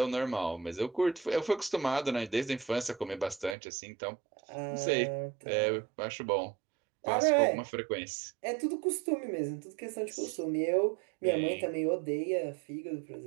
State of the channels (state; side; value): drops out; left; at 3.6 s